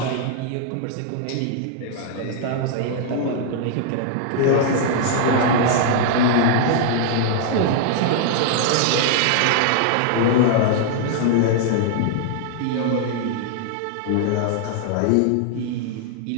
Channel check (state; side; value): different; both; correlation -0.01